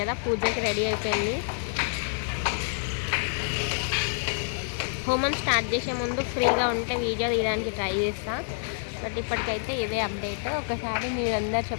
పూజకి రెడీ అయిపోయింది. హోమం స్టార్ట్ చేసే ముందు ఫ్రీగా ఉంటే వీడియో తీయడానికి ట్రై చేస్తా. బట్ ఇప్పటికైతే ఇదే అప్డేట్. ఒకసారి మీరందరూ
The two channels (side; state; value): right; silent; digital silence